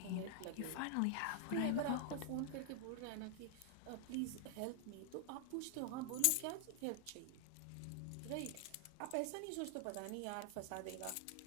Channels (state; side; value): different; both; correlation 0.00